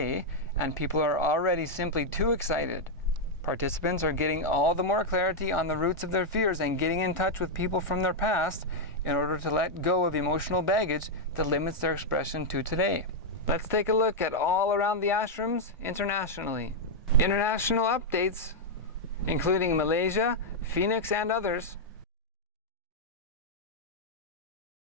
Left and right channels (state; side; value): normal; both; correlation -0.02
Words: and people are already simply too excited. Participants are getting all the more clarity on the roots of their fears and getting in touch with people from their past in order to let go of emotional baggage that limits their expression to today. Let's take a look at all around the ashrams internationally. International updates, including Malaysia, Phoenix, and others.